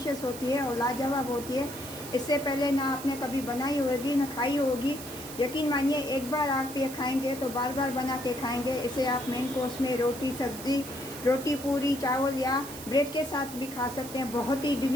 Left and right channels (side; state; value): right; noise; hiss, 12 dB below the sound